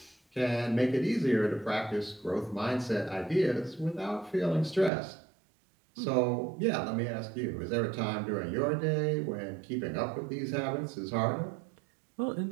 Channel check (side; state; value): left; drops out; at 4.9 s